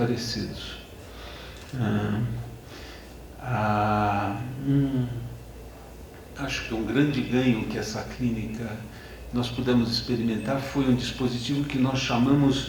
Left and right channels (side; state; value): both; identical; correlation 1.00